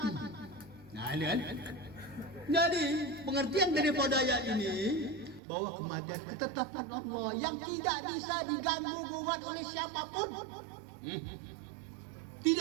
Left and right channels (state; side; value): drops out; left; at 5.4 s